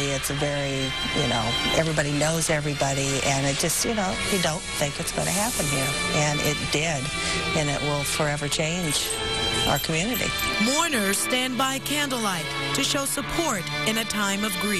It's a very, everybody knows everybody, and it just, you don't think it's going to happen here. And it did, and it will forever change our community. Mourners stand by candlelight to show support in a time of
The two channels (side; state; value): both; identical; correlation 1.00